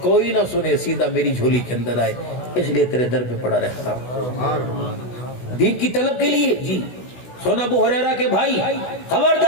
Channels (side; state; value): right; late; 16 ms